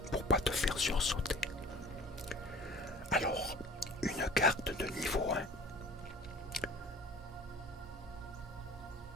pour pas te faire sursauter. Alors, une carte de niveau 1.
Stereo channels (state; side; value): normal; both; correlation 0.43